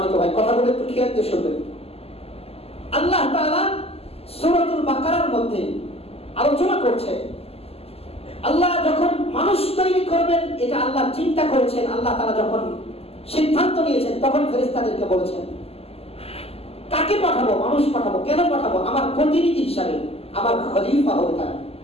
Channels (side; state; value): right; late; 0.29 ms